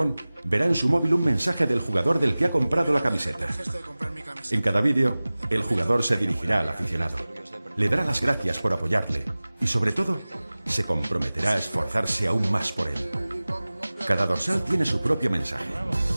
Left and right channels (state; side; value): inverted; both; correlation -0.99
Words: verá en su móvil un mensaje del jugador del que ha comprado la camiseta. En cada vídeo, el jugador se dirigirá al aficionado, le dará las gracias por apoyarle y, sobre todo, se comprometerá a esforzarse aún más por él. Cada dorsal tiene su propio mensaje.